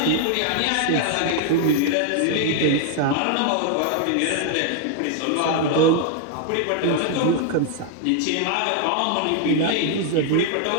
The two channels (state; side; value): different; both; correlation 0.00